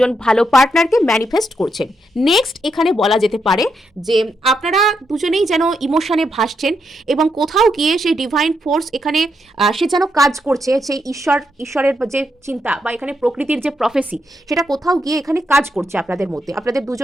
ভালো পার্টনারকে ম্যানিফেস্ট করছেন। নেক্সট এখানে বলা যেতে পারে যে আপনারা দুজনেই যেন ইমোশনে ভাসছেন, এবং কোথাও গিয়ে সেই ডিভাইন ফোর্স এখানে সে যেন কাজ করছে, সেই ঈশ্বরের যে চিন্তা বা এখানে প্রকৃতির যে প্রফেসি সেটা কোথাও গিয়ে এখানে কাজ করছে আপনাদের মধ্যে। আপনাদের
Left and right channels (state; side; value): normal; both; correlation 0.81